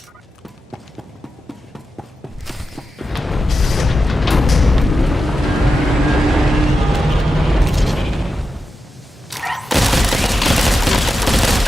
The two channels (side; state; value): both; normal; correlation 0.90